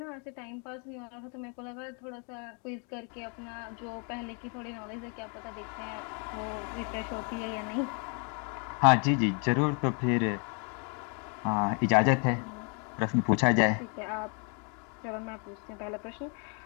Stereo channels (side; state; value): right; quieter; 37.5 dB